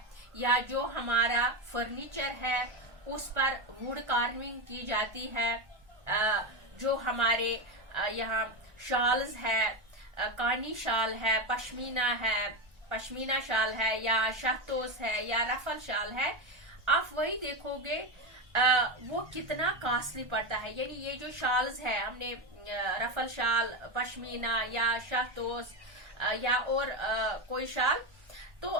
या जो हमारा फर्नीचर है उस पर वुड कार्विंग की जाती है, जो हमारे यहाँ शॉल्स है, कानी शाल है, पश्मीना शाल है या शहतोस है या रफल शाल है, आप वही देखोगे वो कितना कॉस्टली पड़ता है। यानी ये जो शॉल्स है, हमने रफल शाल, पश्मीना या शहतोस या और कोई शाल, तो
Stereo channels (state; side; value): late; left; 1.4 ms